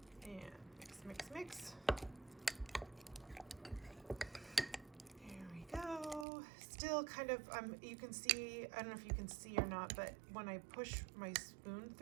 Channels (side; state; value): left; drops out; at 6.2 s